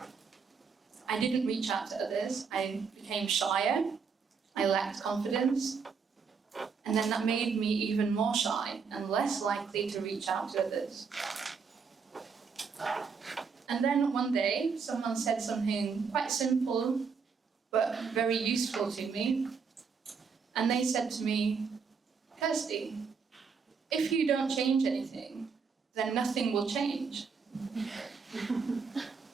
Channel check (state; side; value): quieter; left; 5.7 dB